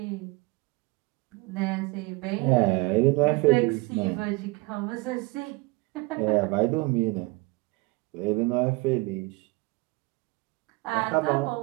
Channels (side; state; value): left; quieter; 23.2 dB